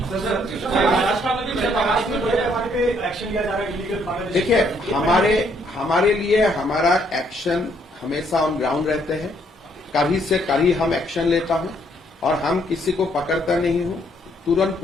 देखिए, हमारे लिए हमारा एक्शन हमेशा ऑन ग्राउंड रहते हैं. कभी से कभी हम एक्शन लेता हूं और हम किसी को पकड़ता नहीं हूं, तुरंत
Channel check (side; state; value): both; normal; correlation 0.69